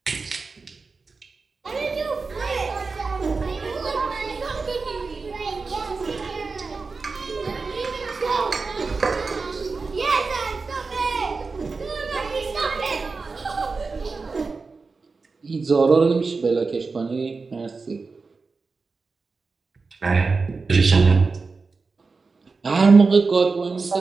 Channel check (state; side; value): quieter; left; 4.3 dB